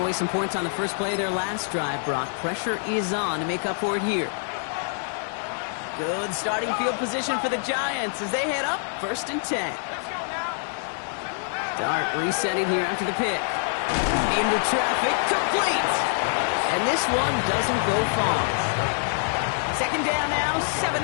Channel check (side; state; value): right; silent; 61 dB below the other